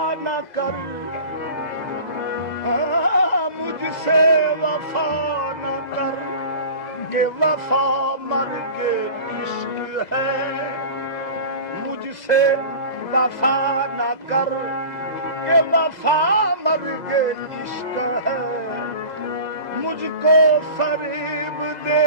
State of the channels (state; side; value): late; right; 2.0 ms